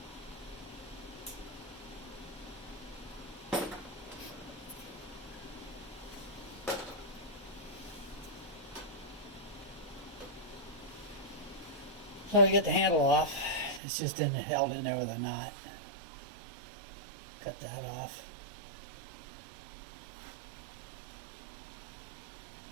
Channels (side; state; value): left; drops out; at 13.8 s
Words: So to get the handle off, it's just held in there with a knot. Cut that off.